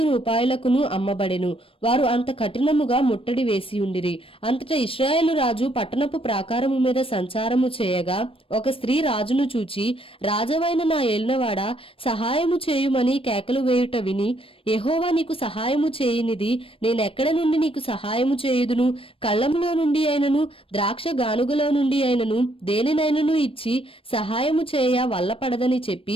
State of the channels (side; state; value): right; late; 0.26 ms